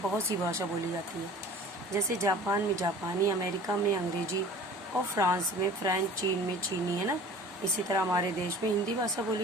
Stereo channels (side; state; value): both; normal; correlation 0.44